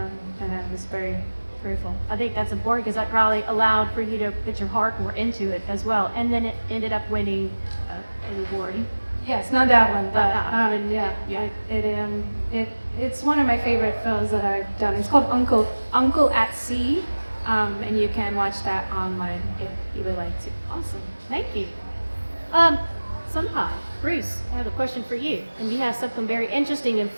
I was very grateful. I think that's important because that probably allowed for you to put your heart more into it as well. And then it ended up winning award. Yes, not that one, but Ah. it's one of my favorite films that I've done. It's called Uncle at Sea, and you can watch that online if you would like to. Awesome, thank you. Sunpie, Bruce, I have a question for you, and you have something very interesting in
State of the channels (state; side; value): inverted; both; correlation -1.00